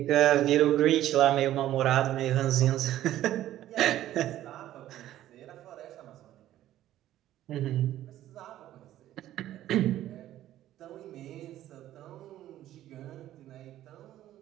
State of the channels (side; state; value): left; quieter; 13.3 dB